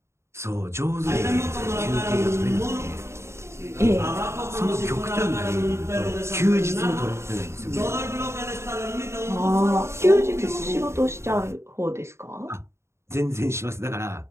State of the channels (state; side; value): late; left; 0.13 ms